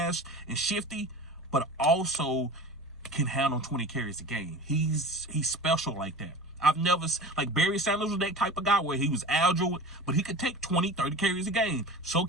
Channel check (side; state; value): both; normal; correlation 0.35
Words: and shifty, but also can handle 20 carries a game. He's special like that. I've never, like Barry Sanders was that type of guy where he was agile, but he could take 20, 30 carries a game. So